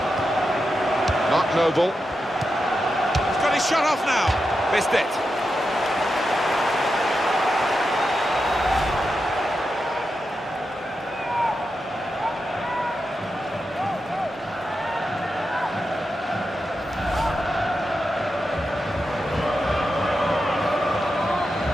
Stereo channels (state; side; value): normal; both; correlation 0.88